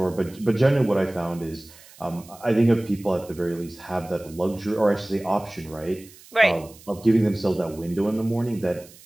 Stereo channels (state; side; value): noise; right; hiss, 22 dB below the sound